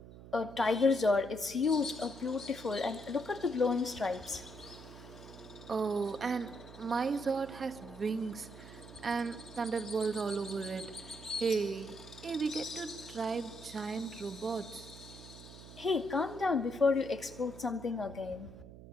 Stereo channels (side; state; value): right; noise; hum, 16 dB below the sound